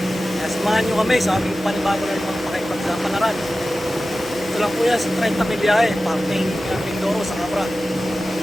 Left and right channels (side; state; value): right; noise; hum, 19 dB below the sound